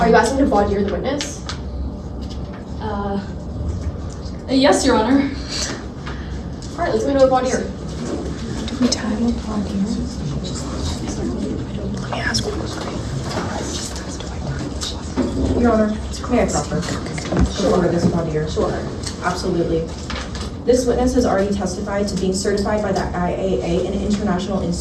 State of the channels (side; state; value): both; identical; correlation 1.00